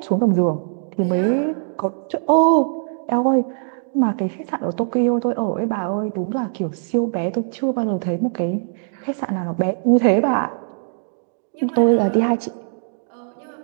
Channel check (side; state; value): left; silent; digital silence